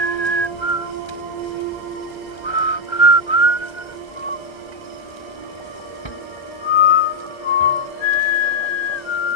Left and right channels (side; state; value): right; late; 1.3 ms